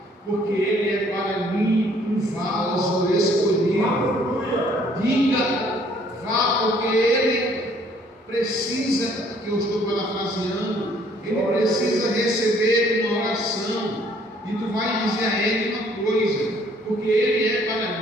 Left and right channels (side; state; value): both; normal; correlation 0.61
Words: porque ele é para mim um vaso escolhido. Diga, vá, porque ele precisa, que eu estou parafraseando, ele precisa receber uma oração. E tu vai dizer a ele uma coisa: porque ele é